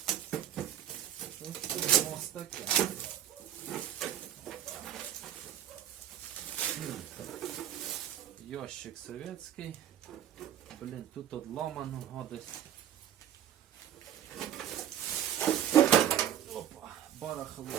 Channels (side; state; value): left; quieter; 10.7 dB